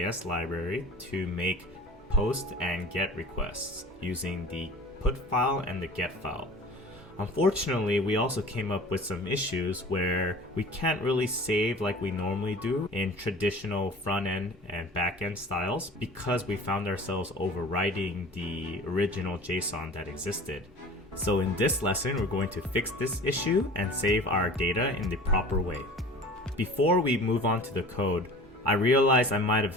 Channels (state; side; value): normal; both; correlation 0.41